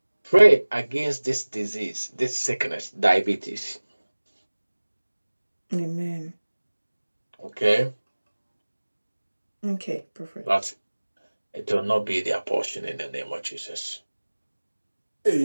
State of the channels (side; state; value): both; inverted; correlation -1.00